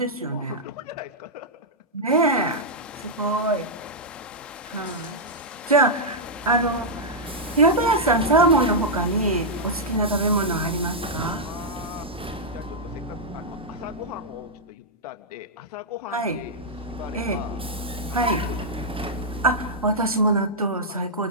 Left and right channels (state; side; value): normal; both; correlation -0.07